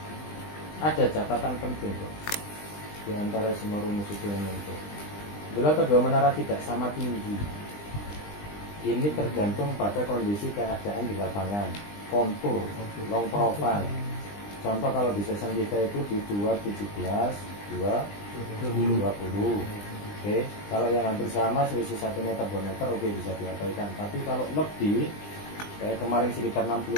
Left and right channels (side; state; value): right; late; 20 ms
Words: Ada catatan penting tuh di antara semua rumus itu yang muncul. Bila kedua menara tidak sama tinggi, ini tergantung pada kondisi keadaan di lapangan, kontur, long profile. Contoh kalau di season kita itu di 217, 220. Oke, kalau yang hampir sama selisih 1 meter 2 meter oke bisa diabaikan. Tapi kalau lebih kayak kemarin sekitar